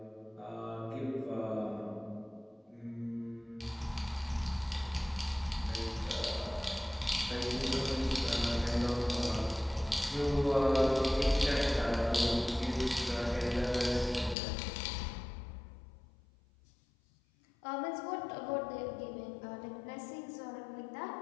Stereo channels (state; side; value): drops out; right; at 14.4 s